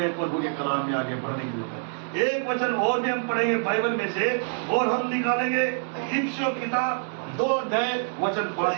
प्रभु के कलाम में आगे बढ़ने की जरूरत है। एक वचन और भी हम पढ़ेंगे बाइबल में से, और हम निकालेंगे इफिसियों किताब 2 अध्याय वचन 5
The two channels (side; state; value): left; silent; 59 dB below the other